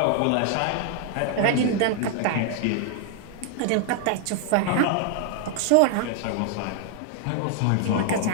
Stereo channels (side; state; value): both; different; correlation 0.00